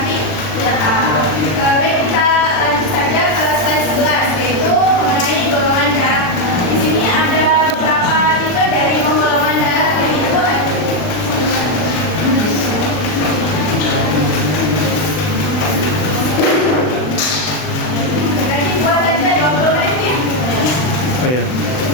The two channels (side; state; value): right; late; 39 ms